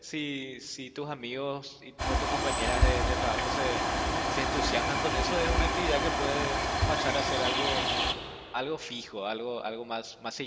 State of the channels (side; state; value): both; identical; correlation 1.00